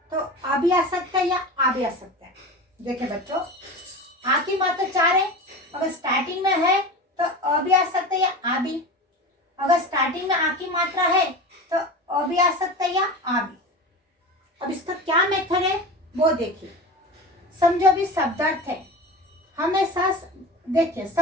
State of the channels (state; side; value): normal; both; correlation 0.30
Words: तो आ भी आ सकता है या आ भी आ सकता है। देखिए बच्चों, आ की मात्रा 4 है। अगर स्टार्टिंग में है तो अ भी आ सकता है या आ भी। अगर स्टार्टिंग में आ की मात्रा है तो अ भी आ सकता है या आ भी। अब इसका क्या मेथड है वो देखिए। समझो अभी शब्दार्थ है, हमेशा देखिए